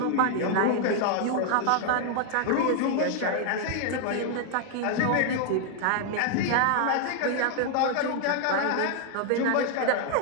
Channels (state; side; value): different; both; correlation 0.00